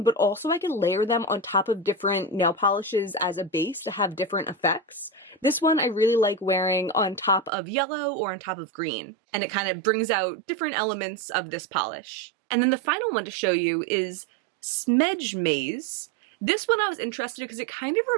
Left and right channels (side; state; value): left; drops out; at 7.5 s